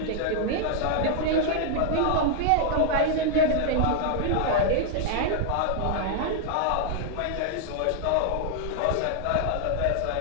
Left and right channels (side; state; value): both; different; correlation 0.00